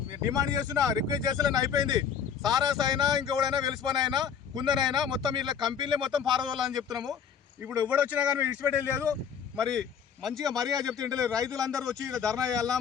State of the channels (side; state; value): right; quieter; 7.5 dB